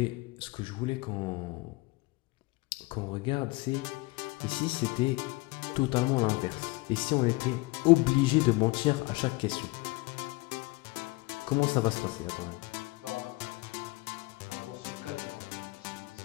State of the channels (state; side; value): quieter; right; 23.3 dB